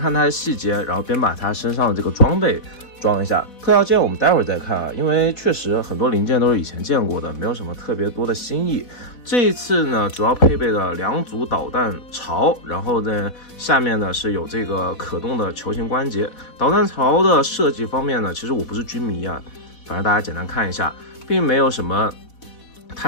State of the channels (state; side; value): late; right; 4.1 ms